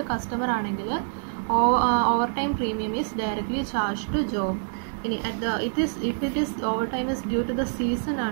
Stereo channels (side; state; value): left; silent; digital silence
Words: customer ആണെങ്കിൽ over time premium is directly charge to job. ഇനി if it is overtime is due to the season